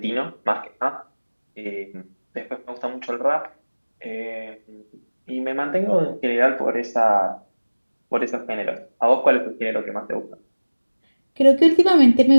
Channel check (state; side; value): inverted; both; correlation -1.00